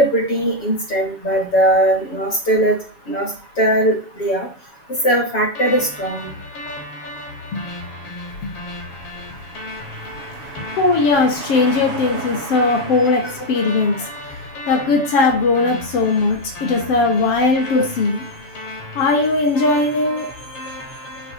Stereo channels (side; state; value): right; late; 7.2 ms